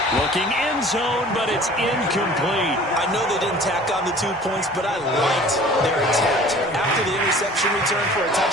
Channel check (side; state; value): both; normal; correlation 0.47